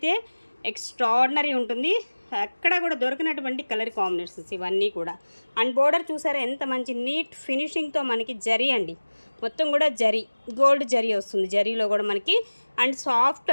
ఎక్స్ట్రాడినరీ ఉంటుంది. ఎక్కడ కూడా దొరికినటువంటి కలర్ కాంబినేషన్స్ ఇవన్నీ కూడా. అండ్ బోర్డర్ చూసారా ఎంత మంచి నీట్ ఫినిషింగ్తో మనకి జరీ అండి, మొత్తం కూడా జరీ, గోల్డ్ జరీ వస్తుంది జరీలో కూడా మనకి. And soft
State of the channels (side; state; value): both; inverted; correlation -1.00